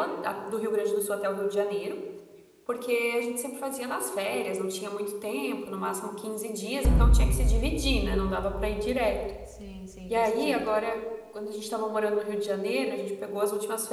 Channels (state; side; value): identical; both; correlation 1.00